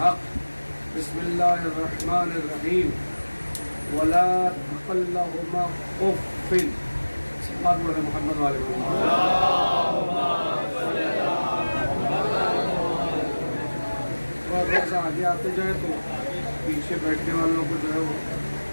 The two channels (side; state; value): both; inverted; correlation -1.00